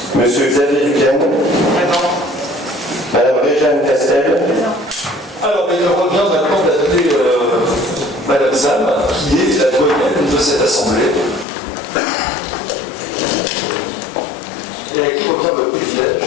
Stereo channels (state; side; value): drops out; right; at 11.5 s